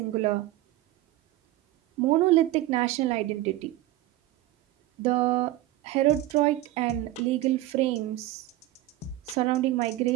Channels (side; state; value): left; quieter; 15.6 dB